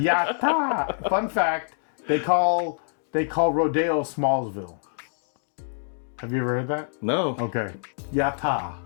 Fun fact: they call Rodeo Smallsville. Have you ever heard that? No. Okay. Yatta.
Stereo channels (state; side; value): silent; right; digital silence